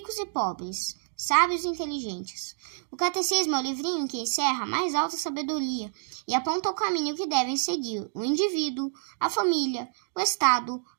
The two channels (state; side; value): silent; left; digital silence